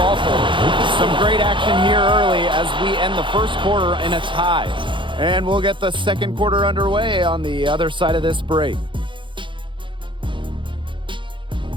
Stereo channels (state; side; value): late; left; 0.24 ms